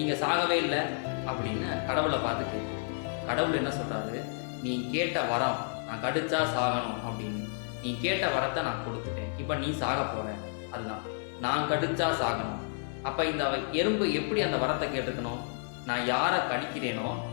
சாகவே இல்லை அப்படின்னு கடவுளை பார்த்துட்டு கடவுள் என்ன சொல்கிறாரு, நீ கேட்ட வரம் நான் கடிச்சா சாகணும் அப்படின்னு, நீ கேட்ட வரத்தை நான் கொடுத்துட்டேன், இப்போ நீ சாக போகிற, அதுதான் நான் கடிச்சா சாகணும். அப்போ இந்த எறும்பு எப்படி அந்த வரத்தை கேட்டுக்கணும், நான் யாரை கடிக்கிறேனோ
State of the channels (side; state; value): right; silent; 57 dB below the other